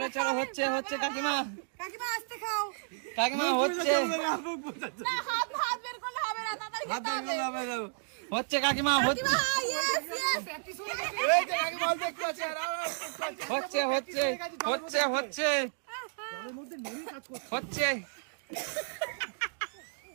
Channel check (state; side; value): silent; left; digital silence